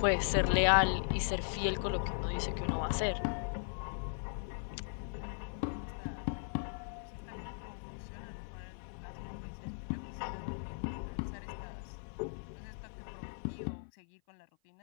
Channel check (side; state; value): right; silent; 53 dB below the other